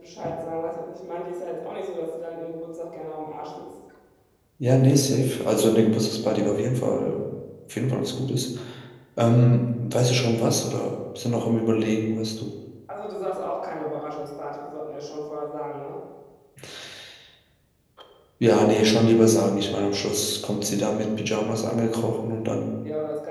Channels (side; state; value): both; identical; correlation 1.00